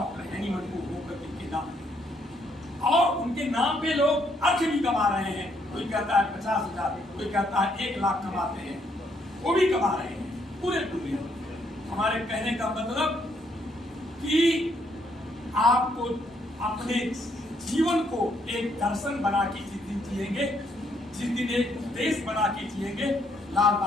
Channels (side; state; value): both; normal; correlation 0.72